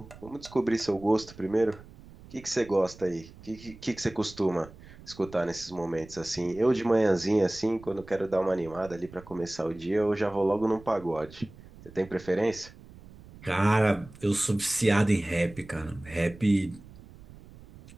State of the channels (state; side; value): noise; right; rumble, 20 dB below the sound